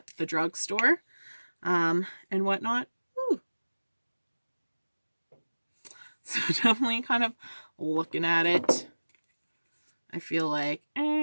the drugstore and whatnot. Ooh. So definitely kind of looking at it, I feel like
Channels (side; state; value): both; inverted; correlation -1.00